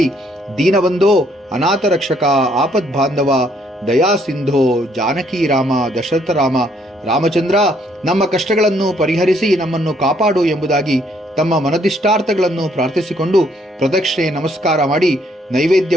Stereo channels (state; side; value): normal; both; correlation 0.68